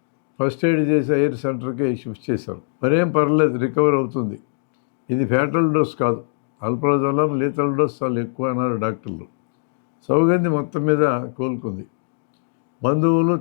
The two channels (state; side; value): silent; right; digital silence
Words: ఫస్ట్ ఎయిడ్ చేసి ఎయిర్ సెంటర్కి షిఫ్ట్ చేశారు. మరేం పర్లేదు, రికవర్ అవుతుంది, ఇది ఫ్యాటల్ డోస్ కాదు, ఆల్ప్రాజోలాం లీతల్ డోస్ చాలా ఎక్కువ అన్నారు డాక్టర్లు. సౌగంధి మొత్తం మీద కోలుకుంది. బంధువులు,